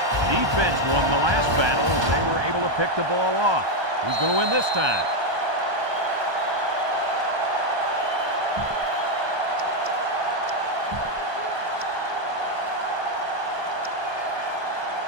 Defense won the last battle as they were able to pick the ball off. Who's going to win this time?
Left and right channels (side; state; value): left; late; 1.2 ms